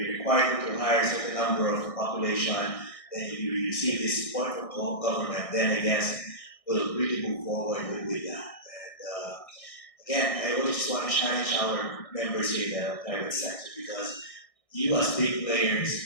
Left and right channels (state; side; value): late; right; 1.6 ms